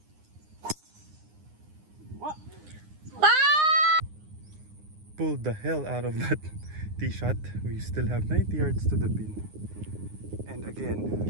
pulled the hell out of that tee shot. We still have 90 yards to the pin. And again,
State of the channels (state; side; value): late; left; 9.7 ms